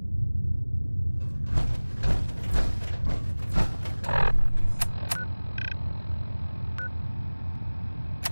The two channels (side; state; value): both; inverted; correlation -1.00